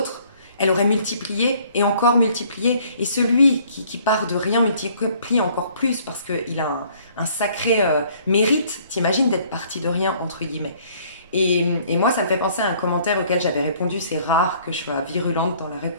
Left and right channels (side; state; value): both; inverted; correlation -0.59